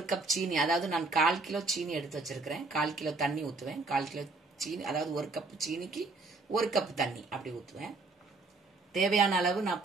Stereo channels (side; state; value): left; quieter; 3.6 dB